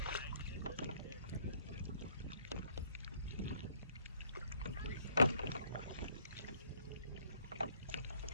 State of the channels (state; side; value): inverted; both; correlation -0.65